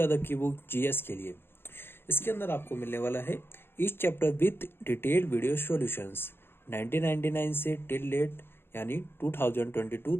की बुक जीएस के लिए। इसके अंदर आपको मिलने वाला है each chapter with detailed video solutions 1999 से टिल डेट यानी 2022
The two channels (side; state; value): right; late; 0.11 ms